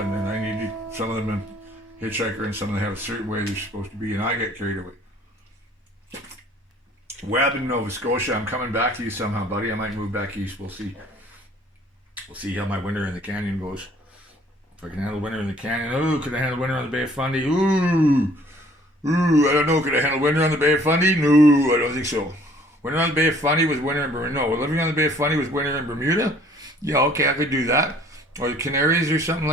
and I need some of them in Hitchhiker, and some of them have a certain way they're supposed to be, and I get carried away. Webb in Nova Scotia, I'm coming back to you somehow, buddy. I might move back east. We'll see. We'll see how my winter in the canyon goes. If I can handle winter in the canyon. Ooh, could I handle winter on the Bay of Fundy? Ooh, I don't know. Could I handle winter on the Bay of Fundy? No, I don't think so. Winter on the Bay of Fundy was winter in Bermuda. No, living on the Bay of Fundy was winter in Bermuda. Yeah, okay, I could do that. Or the Canaries or something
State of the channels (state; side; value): normal; both; correlation 0.57